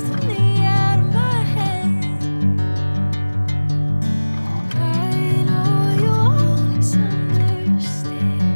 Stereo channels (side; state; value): both; inverted; correlation -1.00